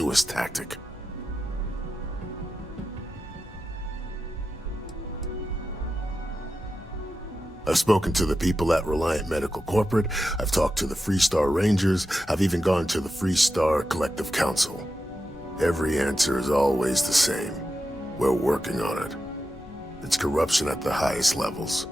tactic. I've spoken to the people at Reliant Medical Corporate, I've talked to the Freestar Rangers, I've even gone to the Freestar Collective Council. Every answer is always the same. We're working on it. It's corruption at the highest levels.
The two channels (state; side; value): normal; both; correlation 0.90